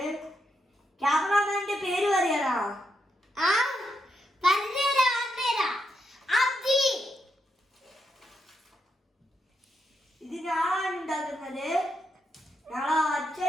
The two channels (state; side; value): normal; both; correlation 0.81